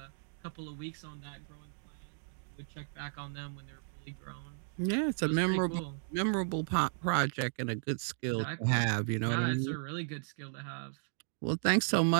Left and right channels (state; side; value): silent; left; digital silence